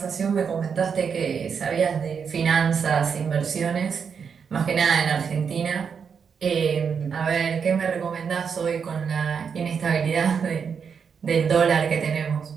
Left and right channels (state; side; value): quieter; left; 6.5 dB